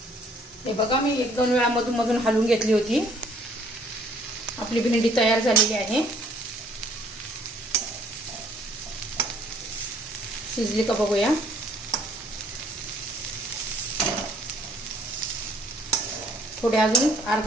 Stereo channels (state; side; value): normal; both; correlation 0.61